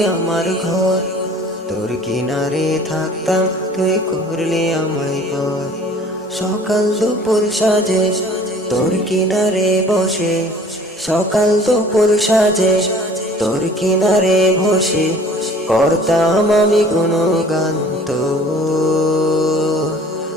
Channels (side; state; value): both; normal; correlation 0.50